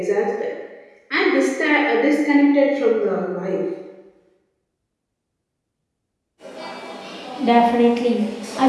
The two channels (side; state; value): both; identical; correlation 1.00